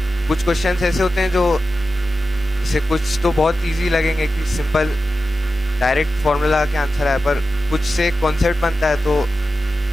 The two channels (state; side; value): normal; both; correlation 0.92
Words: कुछ क्वेश्चंस ऐसे होते हैं जो जैसे कुछ तो बहुत इजी लगेंगे कि सिंपल डायरेक्ट फॉर्मूला के आंसर आए, पर कुछ से कॉन्सेप्ट बनता है, तो